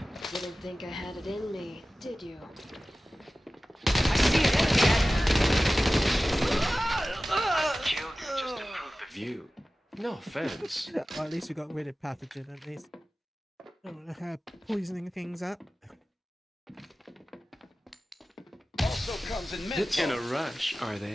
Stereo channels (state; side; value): normal; both; correlation 0.96